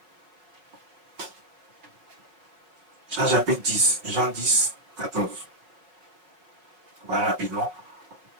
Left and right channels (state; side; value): late; left; 5.1 ms